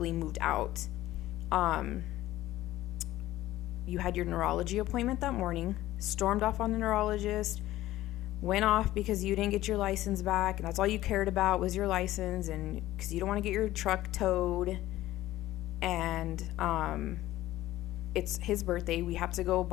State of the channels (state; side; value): quieter; right; 15.4 dB